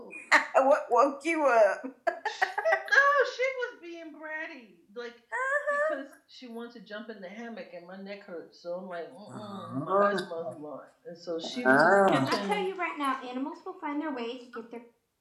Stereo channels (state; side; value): identical; both; correlation 1.00